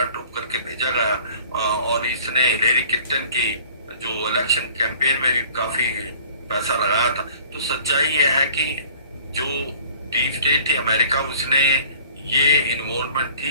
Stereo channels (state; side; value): inverted; both; correlation -0.51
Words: करके भेजा गया और इसने हिलेरी क्लिंटन की जो इलेक्शन कैंपेन में भी काफी पैसा लगाया था। तो सच्चाई ये है कि जो डीप स्टेट थी अमेरिका, उसने ये इन्वॉल्वमेंट